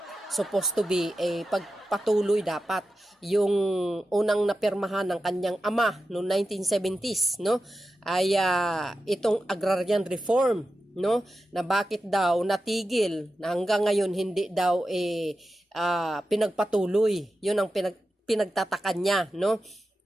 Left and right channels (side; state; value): both; normal; correlation 0.91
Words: supposed to be pagpatuloy dapat yung unang napirmahan ng kanyang ama noong 1970s, no, ay itong agrarian reform, no, na bakit daw natigil na hanggang ngayon hindi daw pinagpatuloy. Yun ang pinagtatakan niya, no,